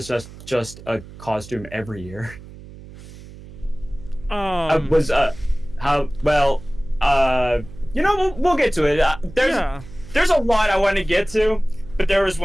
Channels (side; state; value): right; noise; hum, 17 dB below the sound